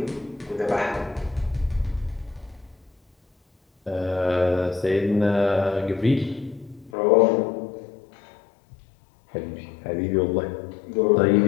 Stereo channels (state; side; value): drops out; right; at 6.9 s